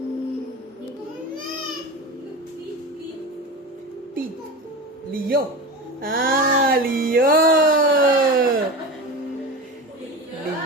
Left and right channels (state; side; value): normal; both; correlation 0.27